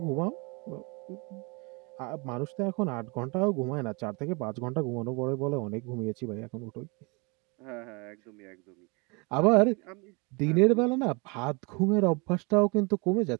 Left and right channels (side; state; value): left; quieter; 29.8 dB